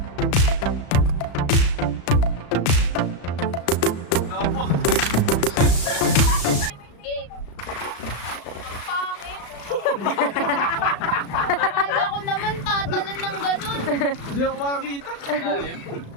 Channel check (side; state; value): right; late; 36 ms